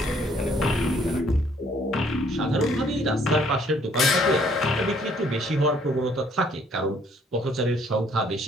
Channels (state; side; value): normal; both; correlation 0.63